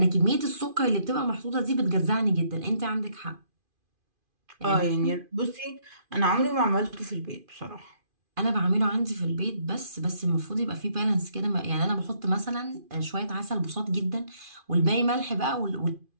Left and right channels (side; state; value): left; late; 2.5 ms